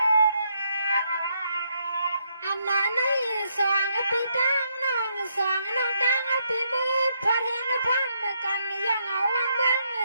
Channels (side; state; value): both; inverted; correlation -0.76